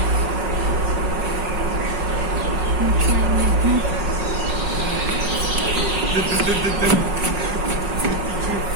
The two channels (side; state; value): left; late; 5.4 ms